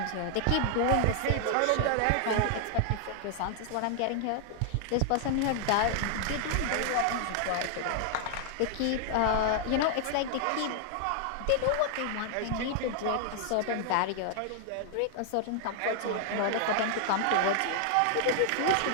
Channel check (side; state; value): both; different; correlation 0.00